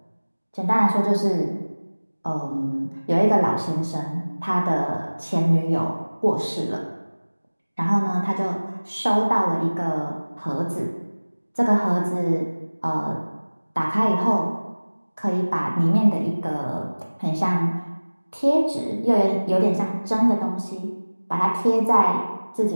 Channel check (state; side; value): inverted; both; correlation -1.00